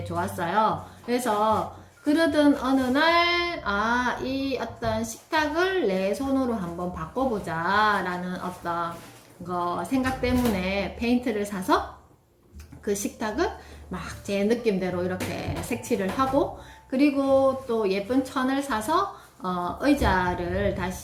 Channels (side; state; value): both; identical; correlation 1.00